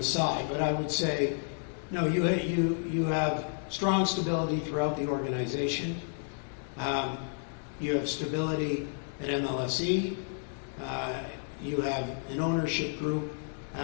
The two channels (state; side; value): silent; right; digital silence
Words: but I would say, no, you have strong stability throughout the organization. You have stability at MLSE. You have an ownership group